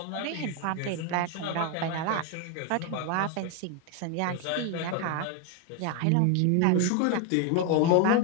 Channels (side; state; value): both; different; correlation 0.01